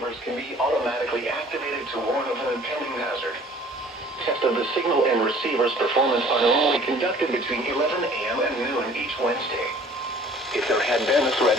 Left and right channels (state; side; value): normal; both; correlation 0.52